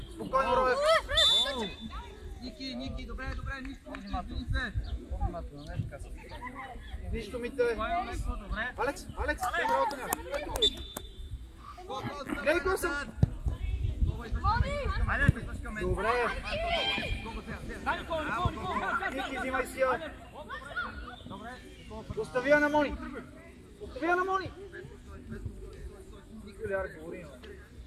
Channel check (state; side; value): identical; both; correlation 1.00